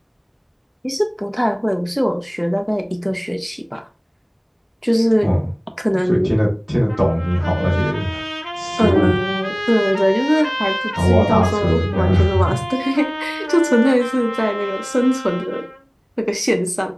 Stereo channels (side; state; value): both; identical; correlation 1.00